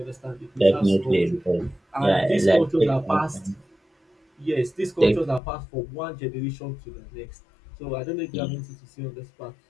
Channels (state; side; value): drops out; right; at 5.4 s